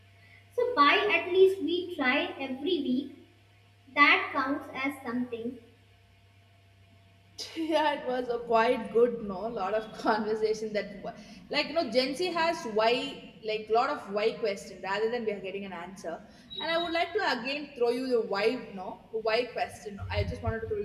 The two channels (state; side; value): identical; both; correlation 1.00